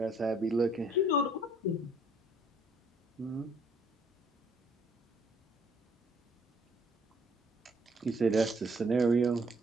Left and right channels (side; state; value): both; normal; correlation 0.63